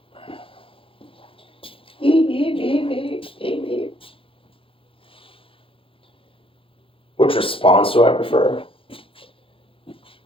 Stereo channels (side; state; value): right; late; 0.26 ms